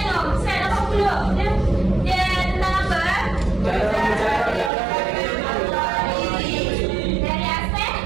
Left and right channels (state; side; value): drops out; left; at 4.7 s